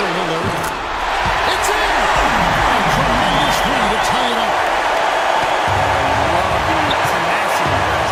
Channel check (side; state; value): both; identical; correlation 1.00